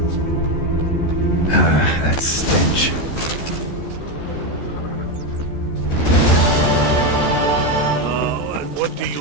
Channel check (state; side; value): late; right; 14 ms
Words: That stench. What do